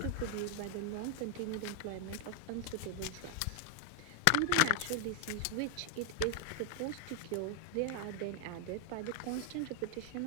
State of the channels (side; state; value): both; different; correlation 0.00